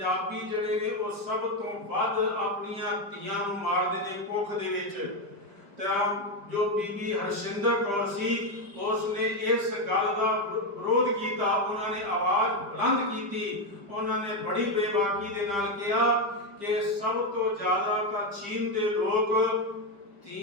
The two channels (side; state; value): left; late; 5.0 ms